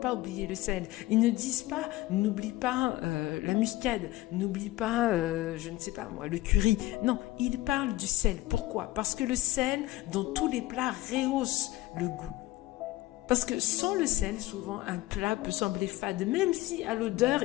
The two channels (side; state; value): right; quieter; 17.5 dB